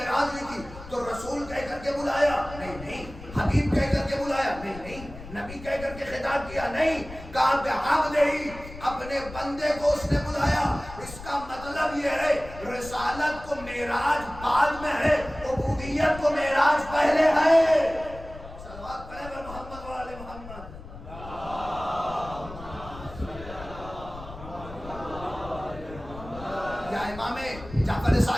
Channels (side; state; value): left; noise; rumble, 14 dB below the sound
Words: ہوئی تھی. تو رسول کہہ کر کے بلایا نہیں, حبیب کہہ کر کے بلایا نہیں, نبی کہہ کر کے خطاب کیا نہیں, کہا بعبدہ, اپنے بندے کو اس نے بلایا. اس کا مطلب یہ ہے رسالت کو معراج بعد میں ہے, عبودیت کو معراج پہلے ہے. صلوات پڑھیں بر محمد و آل محمد. یا امام جعفر